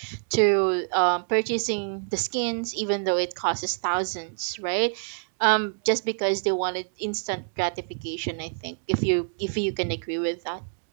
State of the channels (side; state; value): left; silent; digital silence